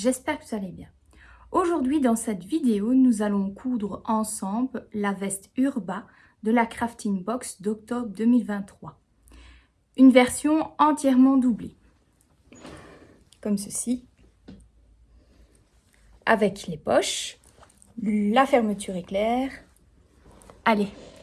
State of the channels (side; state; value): both; identical; correlation 1.00